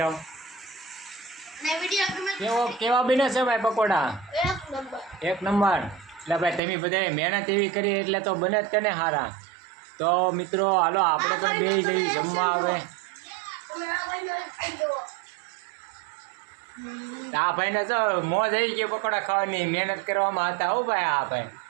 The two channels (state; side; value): drops out; left; at 6.6 s